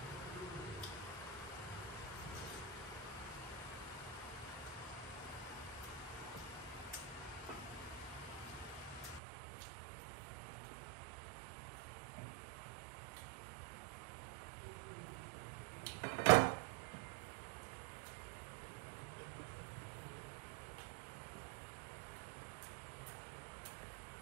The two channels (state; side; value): drops out; left; at 9.2 s